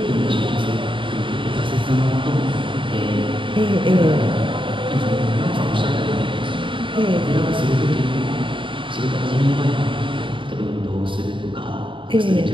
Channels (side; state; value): left; late; 0.24 ms